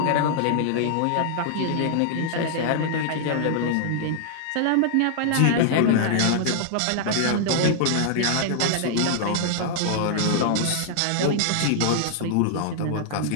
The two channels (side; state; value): both; different; correlation -0.01